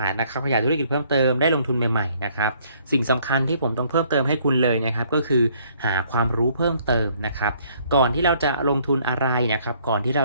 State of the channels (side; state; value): both; inverted; correlation -0.64